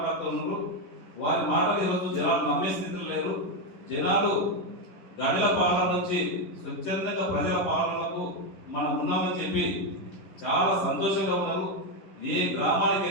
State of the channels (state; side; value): late; right; 11 ms